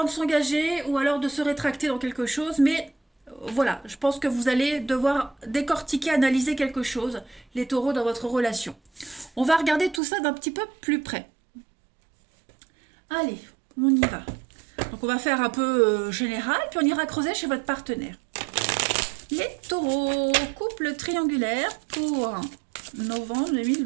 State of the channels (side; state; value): left; drops out; at 10.0 s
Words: de s'engager ou alors de se rétracter dans quelque chose. Mais voilà, je pense que vous allez devoir décortiquer, analyser quelque chose, les taureaux dans votre relation. On va regarder tout ça d'un petit peu plus près. Allez, on y va. Donc on va faire un peu général, puis on ira creuser chez votre partenaire. Les taureaux, couple triangulaire pour novembre